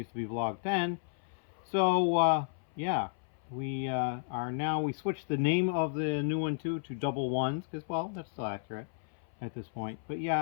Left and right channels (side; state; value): right; silent; 56 dB below the other